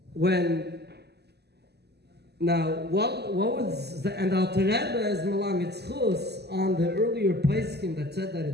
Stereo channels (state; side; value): late; left; 0.48 ms